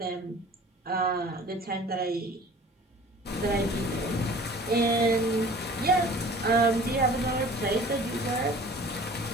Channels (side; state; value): both; normal; correlation 0.46